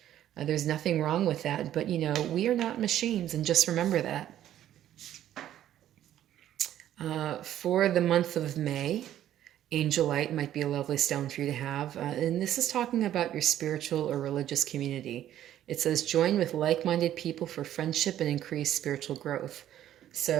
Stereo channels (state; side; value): quieter; left; 11.8 dB